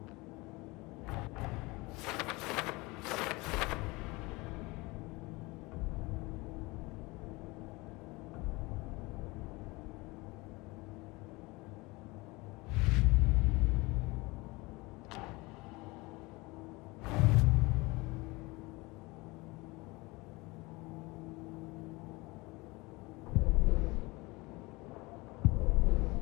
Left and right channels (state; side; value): quieter; right; 23.6 dB